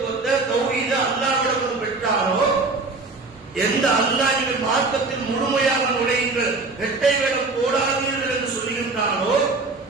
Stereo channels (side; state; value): left; quieter; 3.7 dB